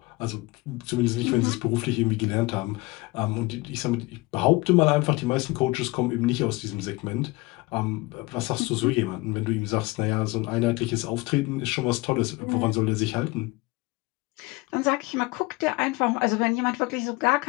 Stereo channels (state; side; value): quieter; right; 22.6 dB